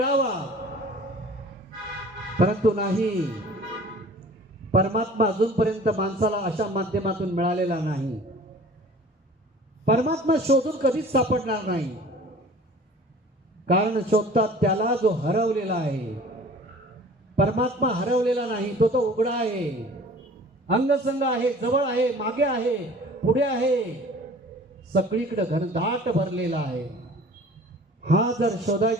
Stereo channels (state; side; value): normal; both; correlation 0.46